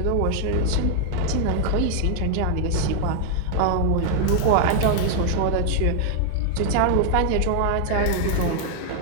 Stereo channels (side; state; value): both; different; correlation 0.00